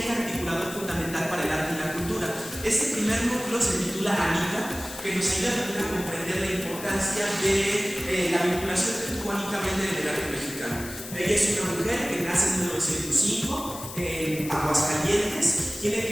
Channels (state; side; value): noise; left; hiss, 12 dB below the sound